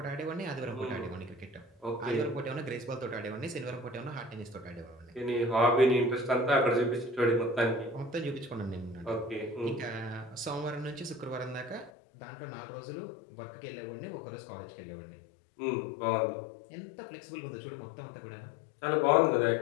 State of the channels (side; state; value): right; drops out; at 11.9 s